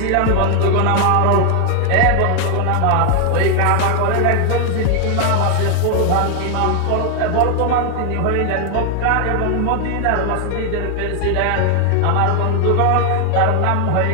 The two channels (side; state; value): both; different; correlation 0.00